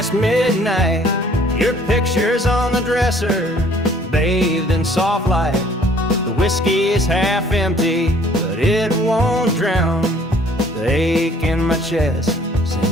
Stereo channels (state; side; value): normal; both; correlation 0.57